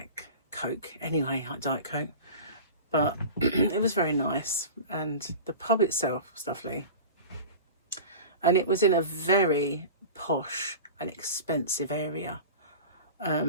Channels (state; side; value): inverted; both; correlation -0.34